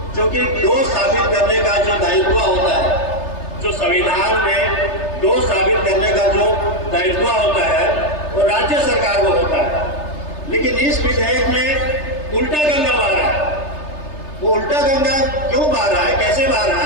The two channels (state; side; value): late; right; 3.3 ms